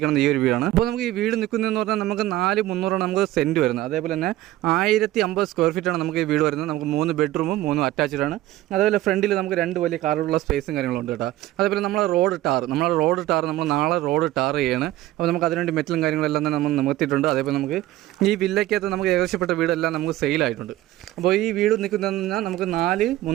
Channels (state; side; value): quieter; left; 15.4 dB